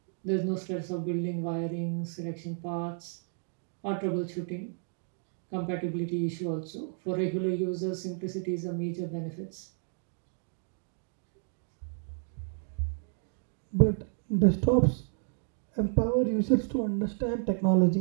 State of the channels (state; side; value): silent; left; 57 dB below the other